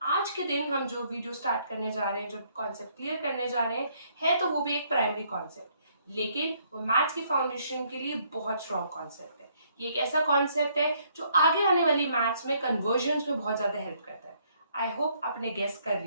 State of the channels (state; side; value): inverted; both; correlation -0.68